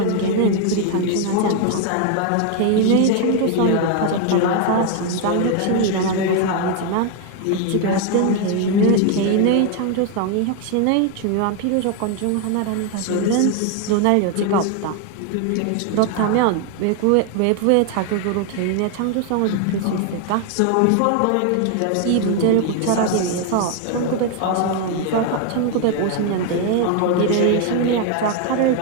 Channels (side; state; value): both; different; correlation 0.01